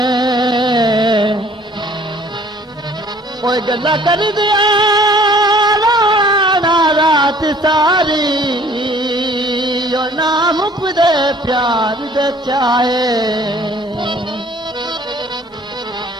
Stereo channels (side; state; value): both; normal; correlation 0.55